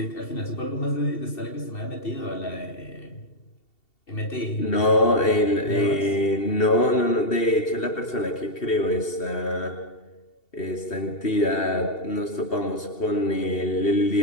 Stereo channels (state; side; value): late; right; 2.7 ms